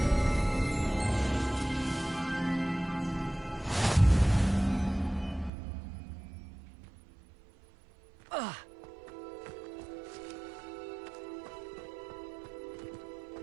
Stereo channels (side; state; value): left; drops out; at 5.5 s